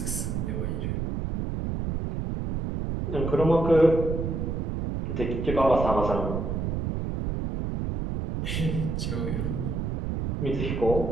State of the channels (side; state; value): right; noise; rumble, 2 dB below the sound